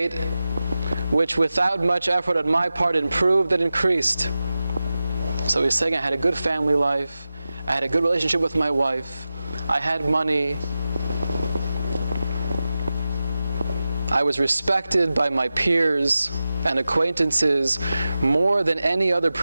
which without much effort on my part improved and increased. So he's saying I had a good family life, I had a good relationship with my wife, I had money, I was respected by my peers and acquaintances more than any other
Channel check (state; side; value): inverted; both; correlation -0.93